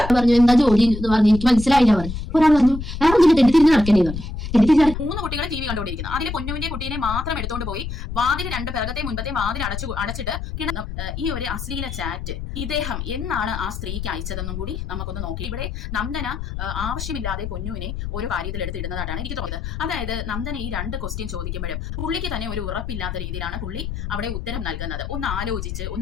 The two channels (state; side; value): noise; left; rumble, 6 dB below the sound